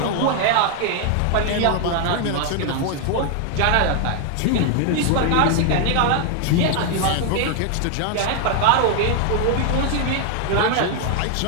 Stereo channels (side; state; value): both; different; correlation 0.00